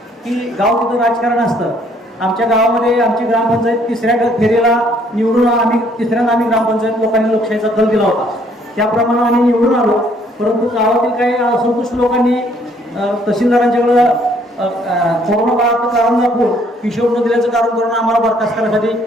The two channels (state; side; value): normal; both; correlation 0.64